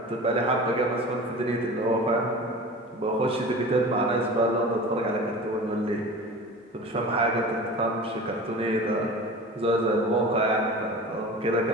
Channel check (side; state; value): both; normal; correlation 0.36